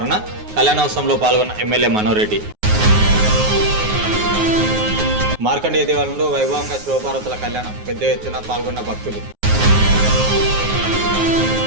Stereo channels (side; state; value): left; late; 9.4 ms